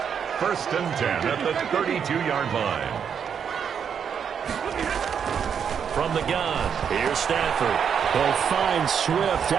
First and 10 at the 32-yard line. From the gun, here's Stafford. He'll find Swift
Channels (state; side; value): quieter; left; 7.5 dB